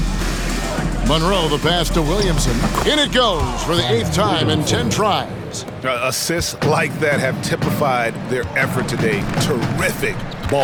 Monroe the pass to Williamson. In it goes for the 8th time in 10 tries. Assists like that have typified their effort today. Terrific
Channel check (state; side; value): identical; both; correlation 1.00